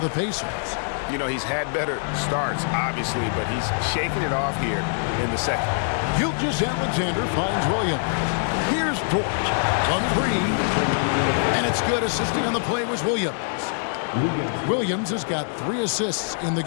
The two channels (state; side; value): silent; right; digital silence